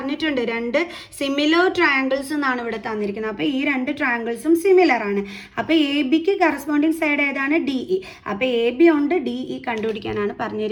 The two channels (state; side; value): identical; both; correlation 1.00